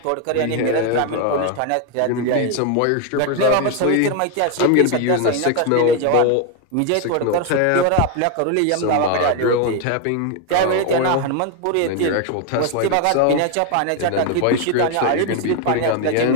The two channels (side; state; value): both; different; correlation 0.01